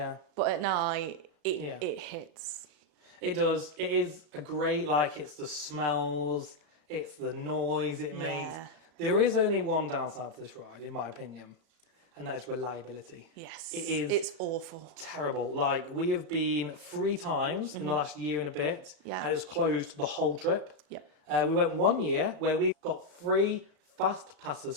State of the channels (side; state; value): left; late; 36 ms